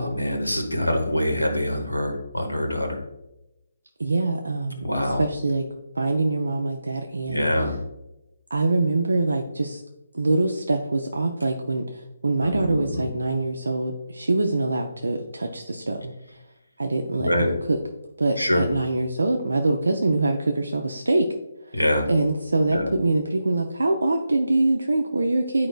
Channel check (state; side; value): inverted; both; correlation -0.89